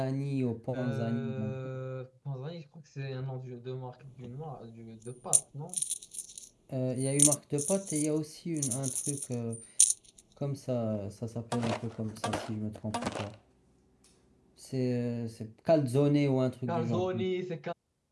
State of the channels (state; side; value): identical; both; correlation 1.00